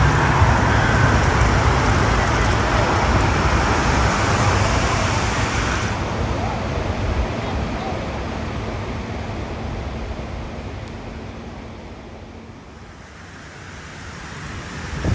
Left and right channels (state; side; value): identical; both; correlation 1.00